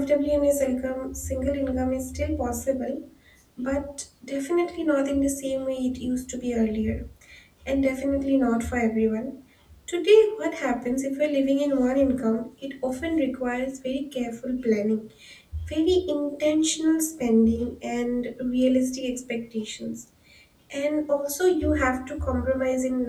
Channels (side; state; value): both; identical; correlation 1.00